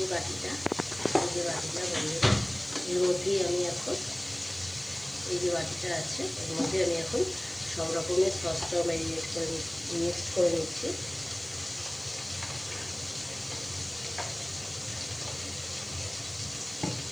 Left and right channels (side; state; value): left; noise; hiss, 27 dB below the sound